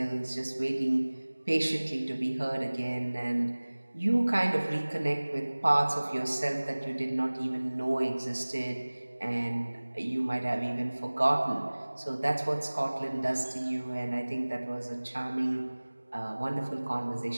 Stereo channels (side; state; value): both; inverted; correlation -1.00